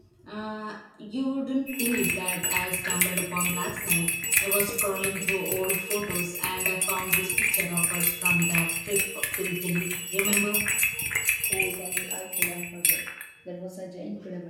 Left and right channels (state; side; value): identical; both; correlation 1.00